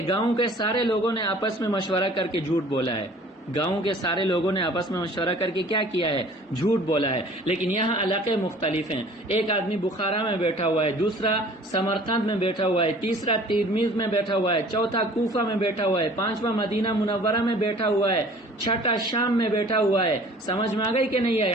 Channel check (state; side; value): normal; both; correlation 0.50